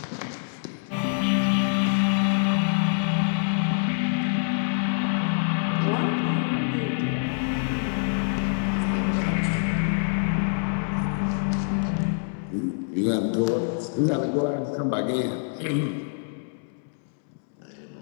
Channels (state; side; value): silent; right; 61 dB below the other